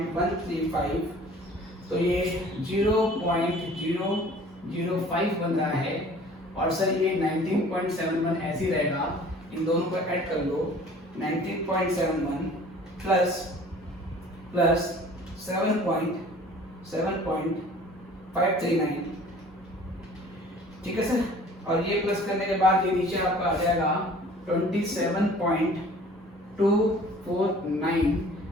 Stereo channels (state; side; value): normal; both; correlation 0.49